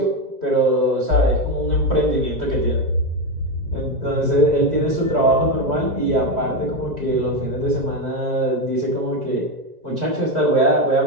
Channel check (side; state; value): left; late; 2.0 ms